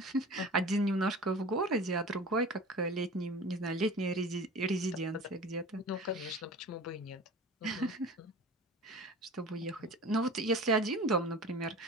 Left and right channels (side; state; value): both; normal; correlation 0.38